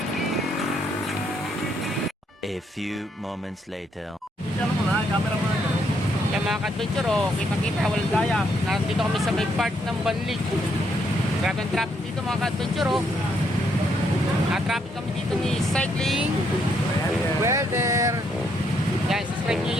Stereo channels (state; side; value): normal; both; correlation 0.74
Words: A few moments later. Ano mo na, camera mo na. Yung mga ka-adventure kita-kita, walang gaya. Nandito kami sa may part ng Banlig. Grabe ang traffic dito mga ka-adventure traffic kami dito ni Cycling Welder. Yan, subscribe nyo